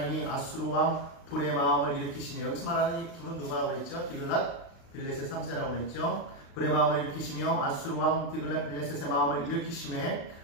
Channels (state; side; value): late; right; 36 ms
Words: 아수르 왕 불의 마음을 일으키시며, 여기서 말하는 이 불은 누구라고 그랬죠? 디글랏 빌레셋 3세라고 그랬죠? 불의 마음을 일으키시며 아수르 왕 디글랏 빌레셋의 마음을 일으키심에